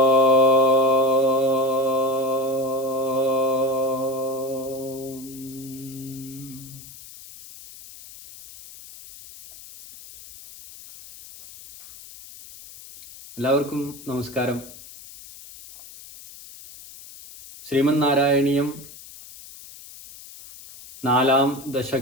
എല്ലാവർക്കും നമസ്കാരം. ശ്രീമന്നാരായണീയം 4-ാം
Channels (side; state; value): left; noise; hiss, 18 dB below the sound